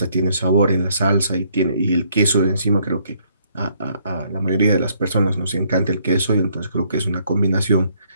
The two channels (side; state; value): both; inverted; correlation -0.67